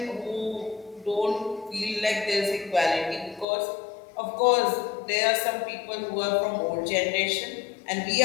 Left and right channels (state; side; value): drops out; right; at 3.5 s